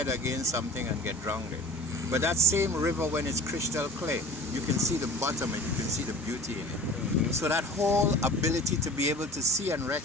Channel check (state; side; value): normal; both; correlation 0.41